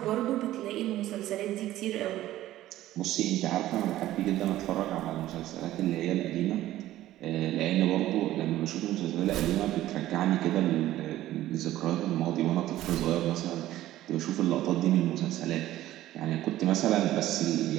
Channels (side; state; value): left; quieter; 14.5 dB